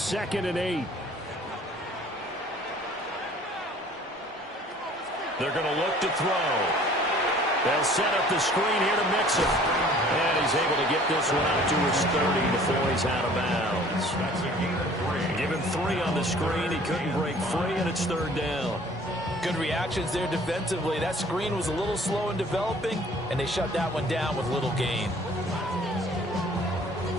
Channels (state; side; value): normal; both; correlation 0.52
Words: and 8. They're going to look to throw. They'll set up the screen here to Mixon. And he's able to get this one out to his 30 before he's out of bounds. Give him 3 on the screen. He couldn't break free, and it's 3rd down. Good reactions there defensively. That screen was a little slow in developing, and they shut that one down with little gain.